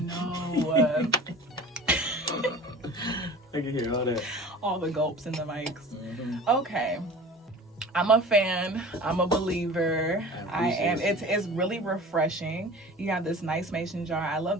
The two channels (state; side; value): normal; both; correlation 0.40